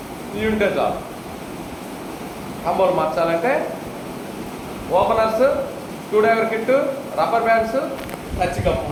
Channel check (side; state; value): both; identical; correlation 1.00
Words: ఇవి ఉంటే చాలు. కాంబోలు మార్చాలంటే openers, screw driver kit, rubber bands, touch cup